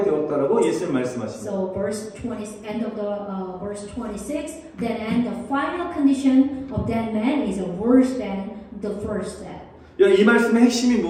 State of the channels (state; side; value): identical; both; correlation 1.00